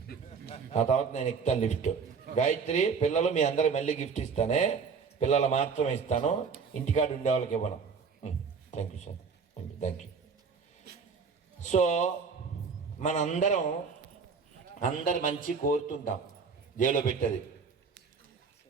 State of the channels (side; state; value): left; quieter; 5.6 dB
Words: ఆ తర్వాత నేను ఎక్కుతాను లిఫ్ట్. గాయత్రి, పిల్లలు మీ అందరూ మళ్ళీ గిఫ్ట్ ఇస్తానే, పిల్లలు మాత్రమే ఇస్తాను, ఇంటికాడ ఉండే వాళ్ళకి ఇవ్వను. Thank you sir, thank you. So మనందరం అందరు మంచి కోరుతుంటాం, దేవులో పెట్టది,